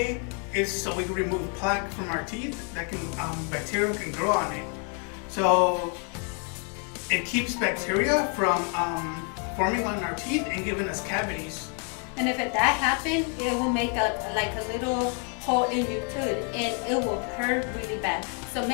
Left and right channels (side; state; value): right; quieter; 39.7 dB